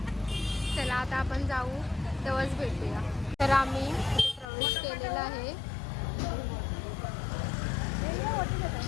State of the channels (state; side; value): drops out; right; at 4.5 s